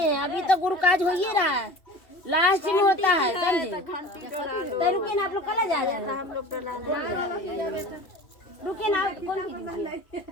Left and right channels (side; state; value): right; late; 2.7 ms